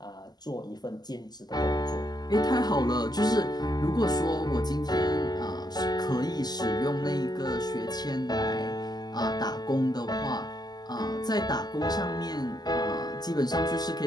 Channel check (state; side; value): late; right; 0.20 ms